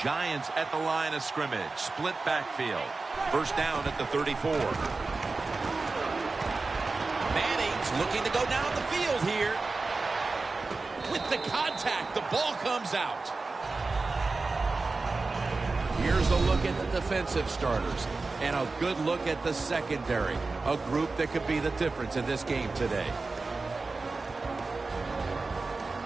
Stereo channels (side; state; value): left; quieter; 3.8 dB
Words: Giants at the line of scrimmage. Split backfield. First down at the 34. Manning's looking to go down the field here. With the contact, the ball comes out. Here's a look at the defensive starters. And a good look at the secondary. A group that could be the difference in this game today.